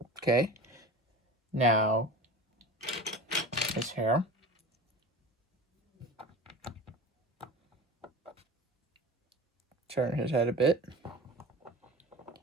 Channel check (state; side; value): normal; both; correlation 0.34